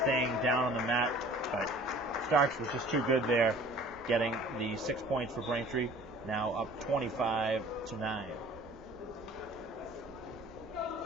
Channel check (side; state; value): both; normal; correlation 0.49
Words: staying down on the mat, but Starks was just too good there, getting the 6 points for Braintree, now up 25-9.